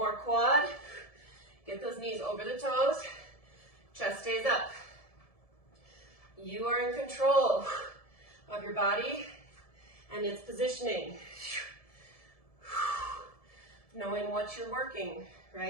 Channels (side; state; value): right; late; 1.7 ms